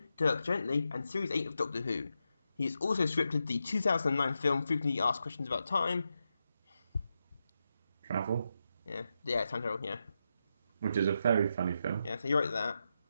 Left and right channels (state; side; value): inverted; both; correlation -0.86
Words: Dirk Gently, and Series 8 of Doctor Who. He has also scripted the 2009 film Frequently Asked Questions About Time. Travel? Yeah, Time Travel, yeah. Which is a very funny film. Yeah, so you wrote that.